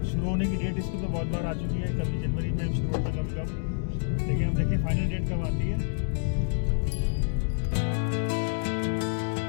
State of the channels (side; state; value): right; silent; 59 dB below the other